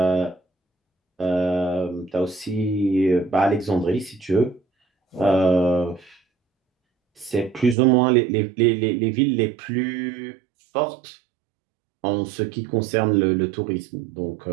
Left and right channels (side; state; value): left; drops out; at 7.8 s